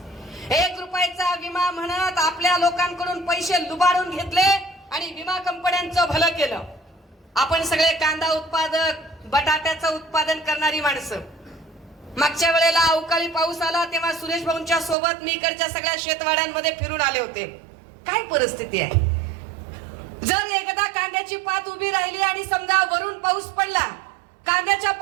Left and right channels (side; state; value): left; drops out; at 15.0 s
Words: 1 रुपयाचा विमा म्हणत आपल्या लोकांकडून पैसे लुबाडून घेतले आणि विमा कंपन्यांचं भलं केलं. आपण सगळे कांदा उत्पादक, बटाट्याचं उत्पादन करणारी माणसं. मागच्या वेळेला अवकाळी पाऊस आला तेव्हा सुरेश भाऊंच्या सोबत मी इकडच्या सगळ्या शेतवाड्यांमध्ये फिरून आले होते. काय परिस्थिती आहे? जर एकदा कांद्याची पात उभी राहिली आणि समजा वरून पाऊस पडला, कांद्याच्या